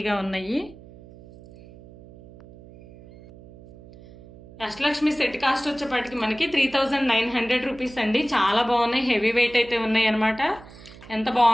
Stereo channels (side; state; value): right; noise; hum, 20 dB below the sound